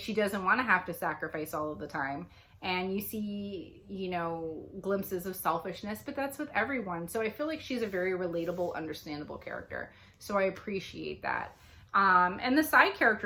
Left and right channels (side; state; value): both; identical; correlation 1.00